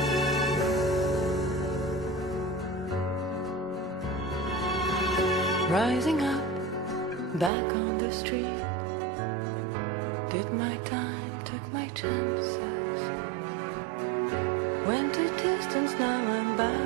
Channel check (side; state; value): left; drops out; at 7.5 s